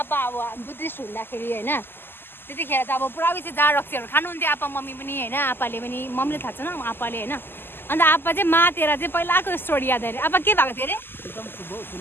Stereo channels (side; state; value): right; late; 0.10 ms